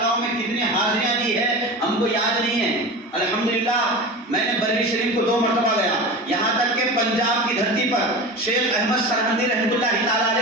میں کتنی حاضریاں دی ہے ہم کو یاد نہیں ہے۔ الحمدللہ میں نے بریلی شریف کو 2 مرتبہ گیا، یہاں تک کہ پنجاب کی دھرتی پر شیخ احمد سرہندی رحمۃ اللہ تعالیٰ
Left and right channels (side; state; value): both; normal; correlation 0.30